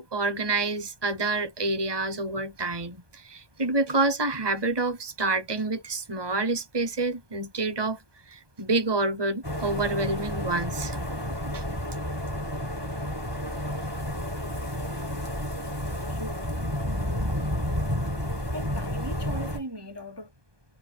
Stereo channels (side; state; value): left; late; 1.2 ms